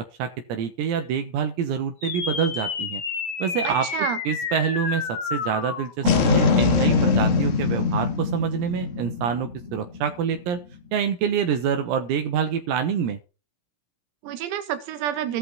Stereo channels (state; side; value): late; left; 17 ms